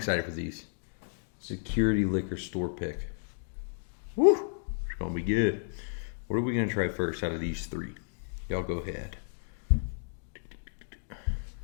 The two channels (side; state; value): right; silent; digital silence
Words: for these. Security Liquor Store pick. Woo! It's going to be good. What are we going to try first out of these three? Y'all go ahead.